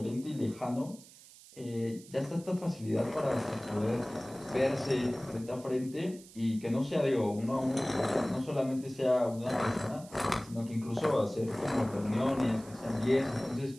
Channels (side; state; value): right; noise; hiss, 21 dB below the sound